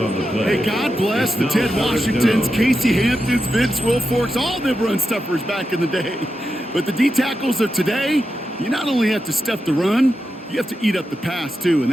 Hey, God bless the Ted Washingtons, Casey Hamptons, Vince Wilforks, all them run stuffers back in the day. But the D-tackles of today, you not only have to stuff the run, you have to eat up the pass, too, and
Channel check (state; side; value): normal; both; correlation 0.88